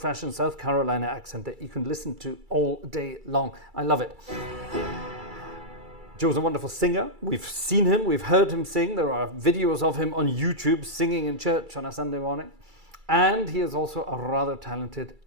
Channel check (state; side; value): late; left; 2.3 ms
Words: South Carolina accent that you can listen to all day long. I love it. Joe's a wonderful singer. We've seen him, we've heard him sing. There are videos of him on YouTube singing in church on a Sunday morning. And he is also a rather talented